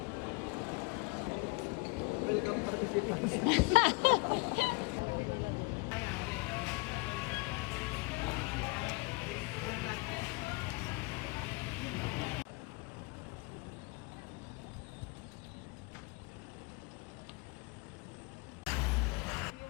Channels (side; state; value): right; quieter; 27.6 dB